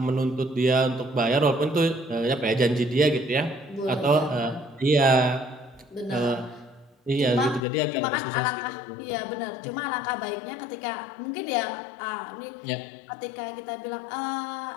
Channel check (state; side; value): drops out; right; at 7.7 s